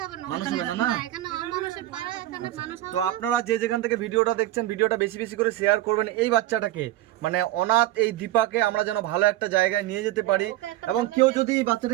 হবে না। মানুষ হবে না, না? এখানে অমানুষের পাড়া, এখানে মানুষ হবে তো আপনারা যে যেখান থেকে ভিডিওটা দেখছেন, ভিডিওটা বেশি বেশি করে শেয়ার করবেন। এই বাচ্চাটাকে, মানে অনাথ এই দীপাকে আমরা যেন ভালো একটা জায়গায় নিয়ে যেতে পারি, এবং কেউ যদি এই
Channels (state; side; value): quieter; left; 14.9 dB